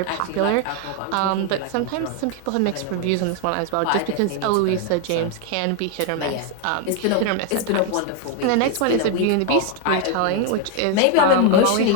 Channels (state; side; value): different; both; correlation 0.01